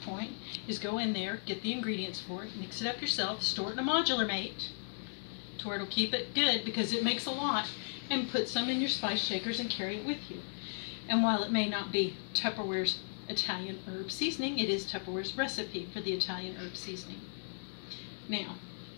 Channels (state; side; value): silent; right; digital silence